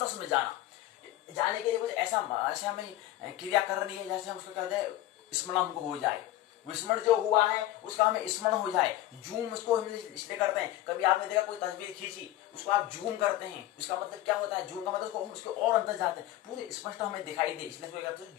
में जाना। जाने के लिए कुछ ऐसा हमें क्रिया करनी है जैसे हम उसको कहते हैं स्मरण हमको हो जाए, विस्मरण जो हुआ है उसका हमें स्मरण हो जाए। जूम उसको हम इसलिए करते हैं, कभी आपने देखा कोई तस्वीर खींची उसको आप जूम करते हैं, उसका मतलब क्या होता है? जूम का मतलब हम उसको और अंदर जाते हैं, पूरे स्पष्ट हमें दिखाई दे, इसलिए उसको कहते हैं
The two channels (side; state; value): right; quieter; 14.6 dB